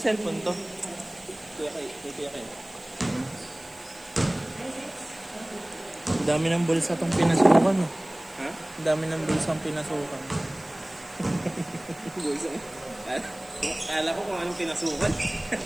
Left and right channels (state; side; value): noise; right; hiss, 23 dB below the sound